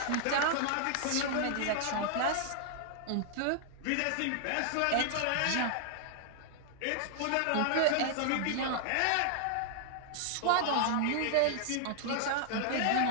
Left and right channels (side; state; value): both; different; correlation -0.01